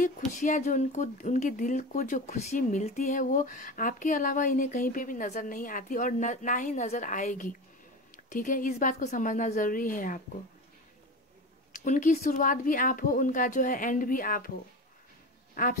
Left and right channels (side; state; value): both; normal; correlation 0.27